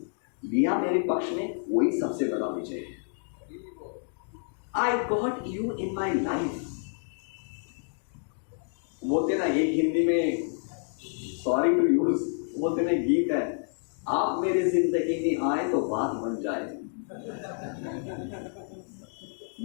लिया मेरे पक्ष में, वही सबसे बड़ा विजय है। I got you in my life। बोलते ना एक हिंदी में, सॉरी टू यूज, बोलते ना गीत है, आप मेरी जिंदगी में आए तो बात बन जाए।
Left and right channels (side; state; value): right; silent; digital silence